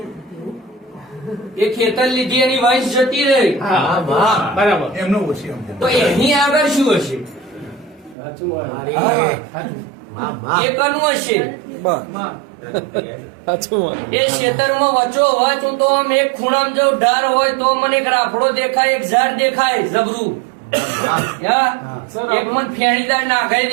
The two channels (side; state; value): left; drops out; at 8.2 s